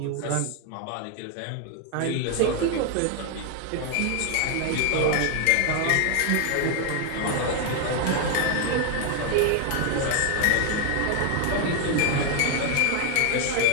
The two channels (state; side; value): different; both; correlation 0.00